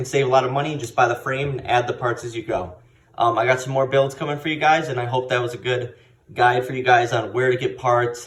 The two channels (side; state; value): both; identical; correlation 1.00